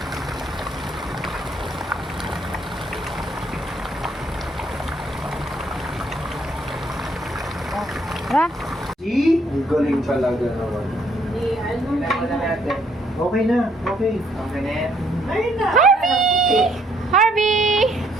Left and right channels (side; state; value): both; normal; correlation 0.68